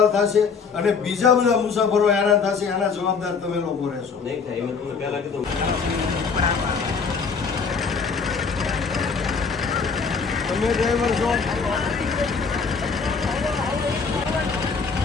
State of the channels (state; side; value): quieter; right; 5.4 dB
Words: થશે અને બીજા બધા મુસાફરો હેરાન થશે. એના જવાબદાર તમે લોકો રહેશો. નહીં થાય. મેં તમને પહેલા કીધું. તમે ડ્રાઈવર છો?